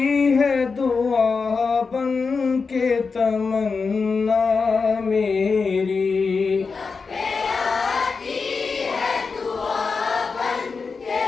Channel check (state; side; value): quieter; right; 4.8 dB